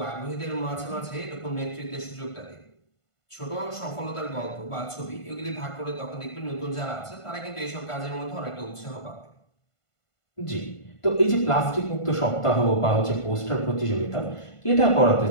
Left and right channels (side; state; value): right; late; 1.5 ms